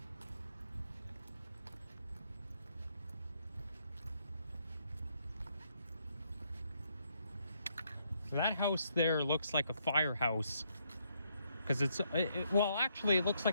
So that house there looks like a firehouse, because well, actually it looks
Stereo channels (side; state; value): both; inverted; correlation -0.74